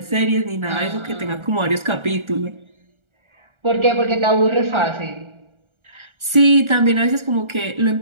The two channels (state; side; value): late; left; 1.4 ms